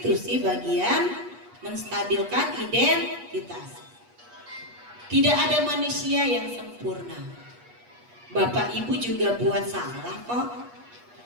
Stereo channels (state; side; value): late; left; 8.3 ms